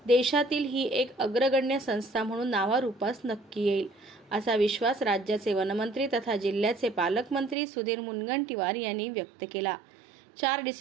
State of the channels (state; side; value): drops out; left; at 7.6 s